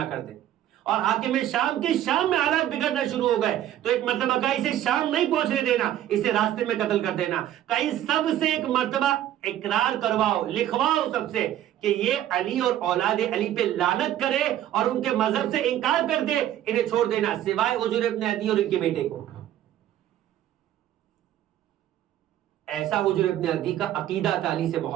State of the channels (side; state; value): left; quieter; 12.2 dB